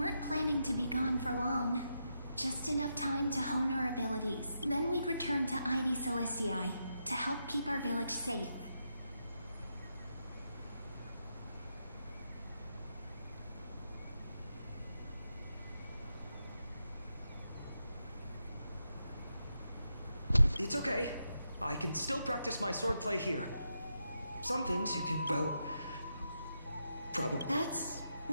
planning to be gone for long. Just enough time to hone our abilities. Then we'd return to Ide Celestii to help keep our village safe. It's okay. I can still practice my swordplay here. Some things you can, well, probably. That's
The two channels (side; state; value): both; inverted; correlation -0.84